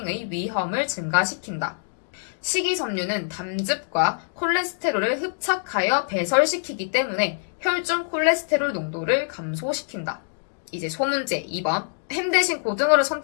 위험을 증가시킨다. 식이섬유는 담즙과 콜레스테롤을 흡착하여 배설시키기 때문에 혈중 콜레스테롤 농도를 감소시킨다. 이제 소문제 2번. 햄 대신 고등어를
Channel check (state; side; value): silent; right; digital silence